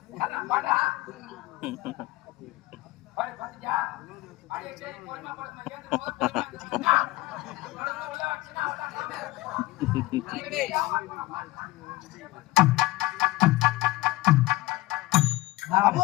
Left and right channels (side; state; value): right; quieter; 19.1 dB